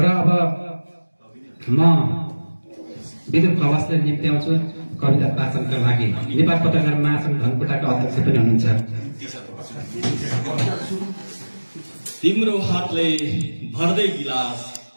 अब म विदुर खवासलाई निम्त्याउँछु कविता वाचनका लागि। नेपाल पत्रकार महासङ्घ धनकुटाका अध्यक्ष पनि हुनुहुन्छ। तिम्रो हातले भर्दै गिलास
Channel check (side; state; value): both; inverted; correlation -1.00